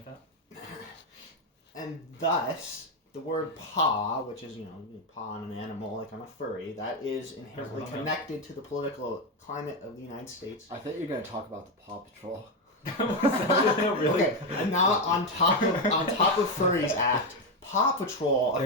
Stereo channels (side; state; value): both; normal; correlation 0.08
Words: that. And thus, the word paw, which is, you paw on an animal like I'm a furry, that is inherently connected to the political climate of the United States. I thought you were going to talk about the Paw Patrol. Really? Okay, and now on top of Furries Act, Paw Patrol a